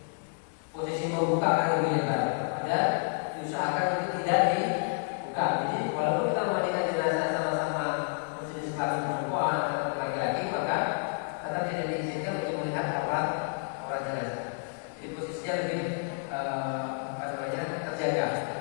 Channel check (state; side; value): silent; right; 58 dB below the other